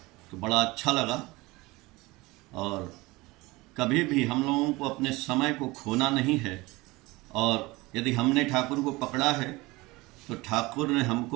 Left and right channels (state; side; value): quieter; left; 22.0 dB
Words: तो बड़ा अच्छा लगा। और कभी भी हम लोगों को अपने समय को खोना नहीं है, और यदि हमने ठाकुर को पकड़ा है तो ठाकुर ने